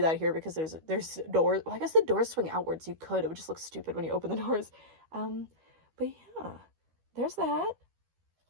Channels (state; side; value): late; left; 12 ms